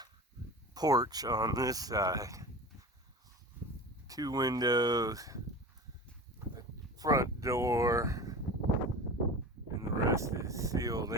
porch on this side. 2 windows, a front door, and the rest is sealed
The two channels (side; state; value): both; normal; correlation 0.34